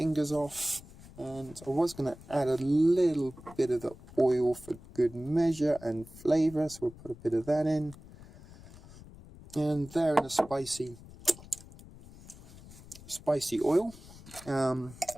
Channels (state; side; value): noise; left; rumble, 19 dB below the sound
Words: off. And I was going to add a little bit of the oil for good measure and flavor, so we'll put a bit of that in. And there in a spicy oil.